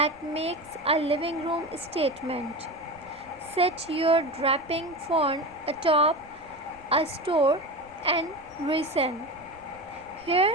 makes a living room statement. Set your draping fern atop a store and reason.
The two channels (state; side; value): noise; right; rumble, 27 dB below the sound